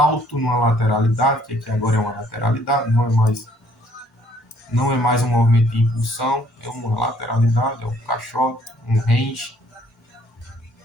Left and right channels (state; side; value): normal; both; correlation 0.63